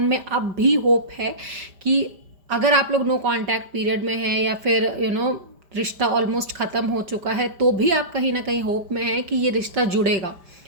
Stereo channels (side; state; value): left; late; 5.0 ms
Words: में अब भी होप है कि अगर आप लोग नो कांटेक्ट पीरियड में हैं या फिर रिश्ता ऑलमोस्ट ख़त्म हो चुका है, तो भी आप कहीं ना कहीं होप में हैं कि ये रिश्ता जुड़ेगा,